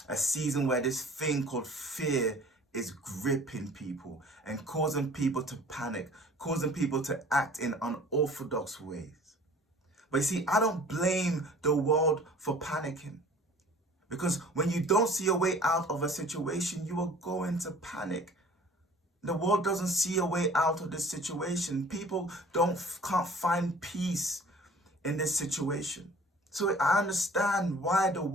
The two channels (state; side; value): normal; both; correlation 0.49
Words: A season where this thing called fear is gripping people and causing people to panic, causing people to act in unorthodox ways. But you see, I don't blame the world for panicking. Because when you don't see a way out of a situation, you are going to panic. The world doesn't see a way out of this situation. People can't find peace in this situation. So I understand why the